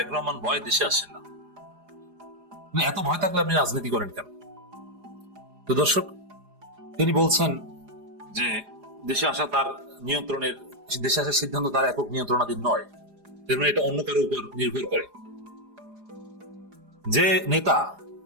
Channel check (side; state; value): left; late; 4.9 ms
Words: রহমান ভয় দেশে আসেন না। মানে এত ভয় থাকলে আপনি রাজনীতি করেন কেন? তো দর্শক, তিনি বলছেন যে দেশে আসা তার নিয়ন্ত্রণের, দেশে আসার সিদ্ধান্ত তার একক নিয়ন্ত্রণাধীন নয়, এর মানে এটা অন্য কারোর উপর নির্ভর করে। যে নেতা